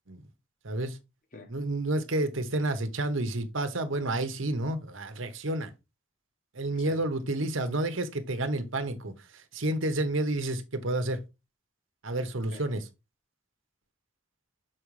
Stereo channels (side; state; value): both; normal; correlation 0.36